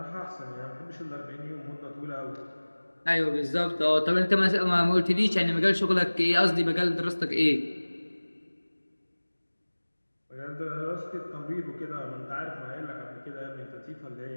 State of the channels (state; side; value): inverted; both; correlation -1.00